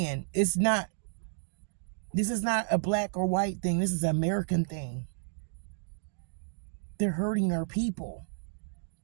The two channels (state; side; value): silent; left; digital silence